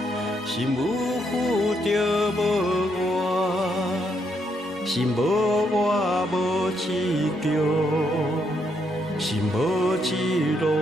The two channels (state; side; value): normal; both; correlation 0.76